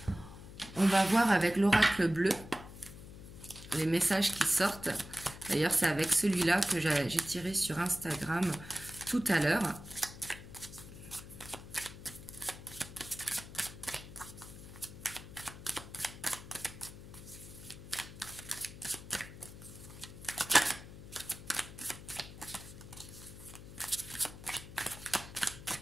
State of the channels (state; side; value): noise; left; hum, 14 dB below the sound